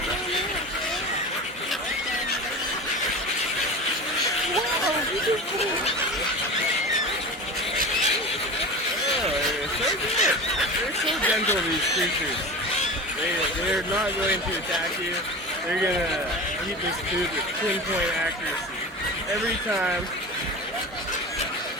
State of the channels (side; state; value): both; normal; correlation 0.31